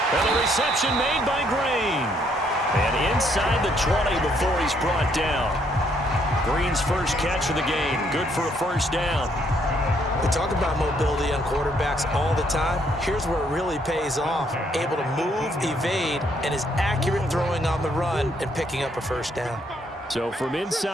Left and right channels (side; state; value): both; normal; correlation 0.70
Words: And the reception made by Green. And inside the 20 before he's brought down. Green's first catch of the game. Good for a 1st down. We talk about mobility on quarterbacks all the time. Here's where it really pays off. Able to move, evade, and is accurate throwing on the run and picking up a 1st down. So from